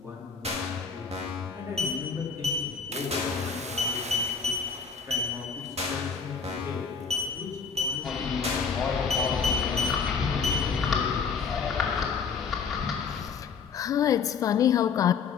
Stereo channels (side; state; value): right; quieter; 5.8 dB